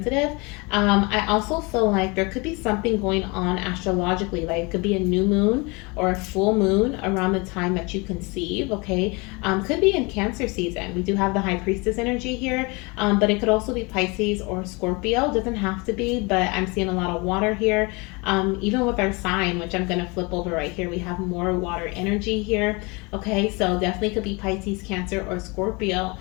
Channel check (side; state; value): right; quieter; 27.6 dB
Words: I also feel like there could be something going on astrologically, like it could be a new moon or a full moon around the time that you conceive, okay? Could be in Cancer season. We do have the High Priestess energy here, but it could also be Pisces or Scorpio. Doesn't have to be, but I'm seeing a lot of water here. Even with our sign, which I'm going to flip over right here, we have more water energy here. Okay, so definitely could be Pisces, Cancer, or Scorpio.